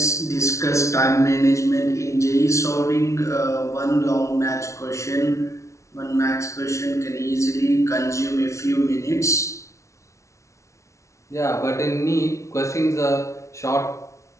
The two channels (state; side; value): late; right; 0.14 ms